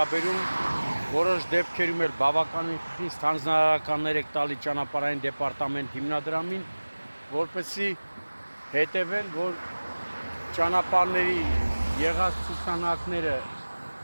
որոշ դեպքերում էլ բավականին խիստ հանձնարարականներ եք տալի ճանապարհային դեպարտամենտ հիմնադրամին, որպեսզի հետևեն, որ ճանապարհների եղած ցուցանակները,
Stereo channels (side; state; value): both; inverted; correlation -1.00